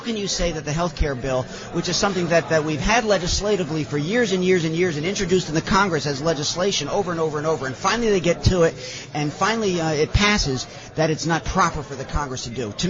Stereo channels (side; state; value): both; identical; correlation 1.00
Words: you say that the health care bill, which is something that we've had legislatively for years and years and years and introduced in the Congress as legislation over and over and over, and finally they get to it, and finally it passes, that it's not proper for the Congress to do. To